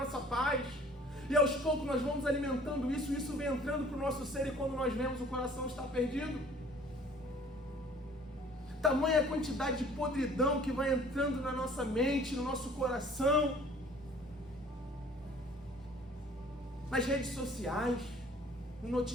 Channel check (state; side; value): normal; both; correlation 0.52